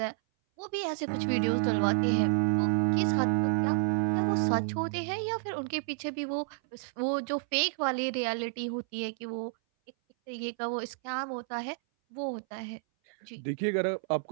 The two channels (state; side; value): silent; left; 57 dB below the other